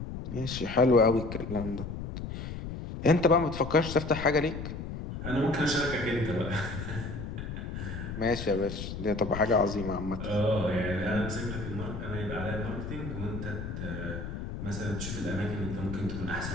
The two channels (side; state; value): left; noise; rumble, 7 dB below the sound